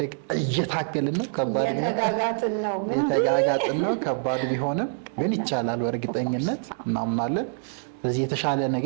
እየታገልን ነው። የተጋጋጥን ነው። ከባድ ቢሆንም ግን ይቻላል በእርግጠኝነት እናምናለን። ስለዚህ የተሻለ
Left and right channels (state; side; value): silent; left; digital silence